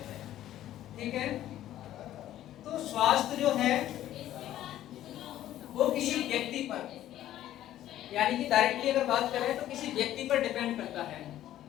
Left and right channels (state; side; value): quieter; right; 12.9 dB